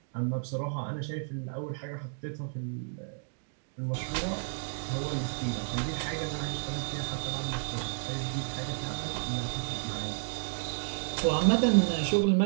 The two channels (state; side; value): silent; left; digital silence